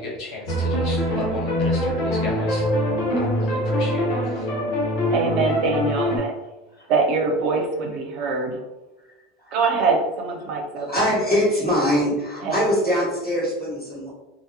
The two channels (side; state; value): both; normal; correlation 0.38